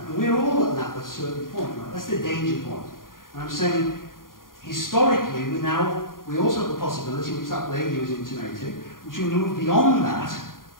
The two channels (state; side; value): late; right; 0.91 ms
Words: And we're all at that at a certain point, right? That's the danger point. And I'm saying, historically, we also have the possibility, which that lady was intimating, which we move beyond that,